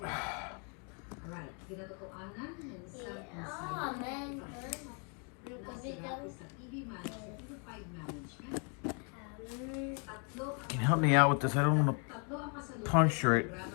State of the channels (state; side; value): quieter; right; 38.2 dB